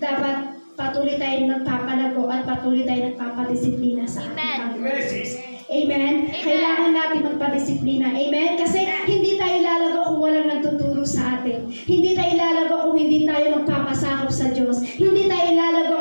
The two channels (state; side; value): inverted; both; correlation -1.00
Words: dapat patuloy tayo nagpapalago at patuloy tayo nagpapadisiplina sa ating Panginoon. Amen? Kailangan natin magpadisiplina. Amen? Kasi hindi tayo lalago kung walang nagtuturo sa atin. Hindi tayo lalago kung hindi tayo magpapasakop sa Diyos. Hindi tayo lalago